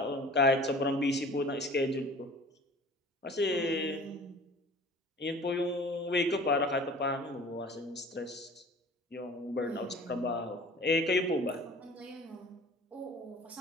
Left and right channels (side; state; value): both; normal; correlation 0.45